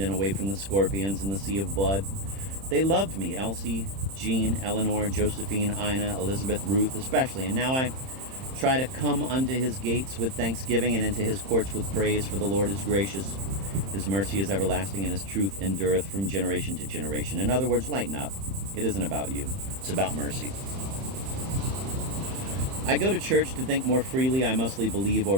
and away from the scorpions and the sea of blood. They loved me, Elsie, Jean, Eleanor, Josephine, Ina, Elizabeth, Ruth especially, and now I try to come unto his gates with thanksgiving and into his courts with praise, for the Lord is gracious. His mercy is everlasting, and his truth endureth from generation to generation. In other words, lighten up. It isn't about you. It's about mercy. I go to church to think more freely. I mostly believe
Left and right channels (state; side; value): late; left; 31 ms